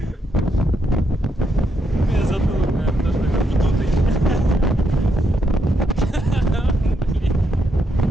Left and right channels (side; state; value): both; normal; correlation 0.79